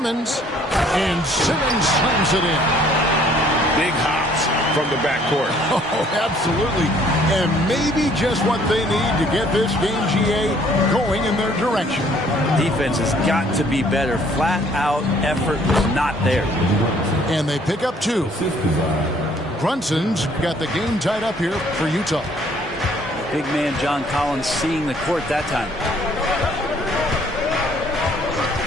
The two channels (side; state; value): both; normal; correlation 0.60